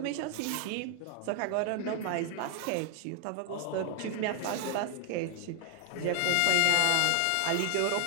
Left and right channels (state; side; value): different; both; correlation 0.00